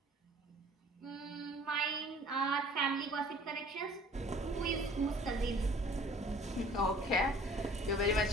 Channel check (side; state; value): both; normal; correlation 0.51